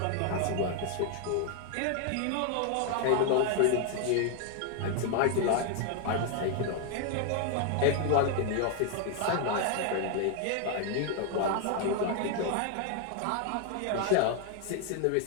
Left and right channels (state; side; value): different; both; correlation 0.00